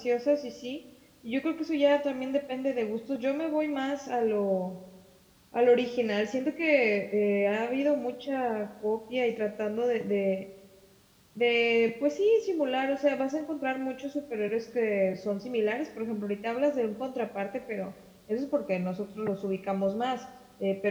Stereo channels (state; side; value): identical; both; correlation 1.00